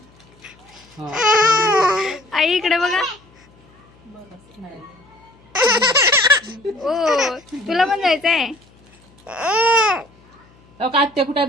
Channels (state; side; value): noise; left; hum, 29 dB below the sound